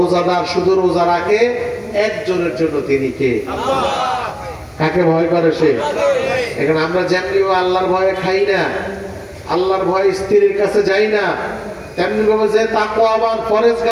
শুধু রোজা রাখে একজনের জন্য, তিনি কে? কাকে ভয় করে সে? এখানে আমরা যেমনি আল্লাহর ভয়ে খাই না, আল্লাহর ভয়ে স্ত্রীর কাছে যাই না, তেমনি ভাবে যে তাকওয়াবান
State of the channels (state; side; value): identical; both; correlation 1.00